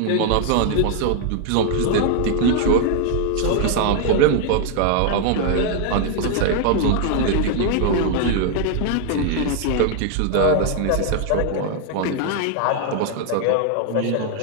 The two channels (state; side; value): different; both; correlation 0.00